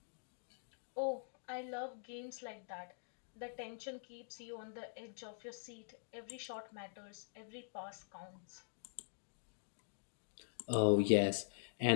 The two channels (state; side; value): silent; right; digital silence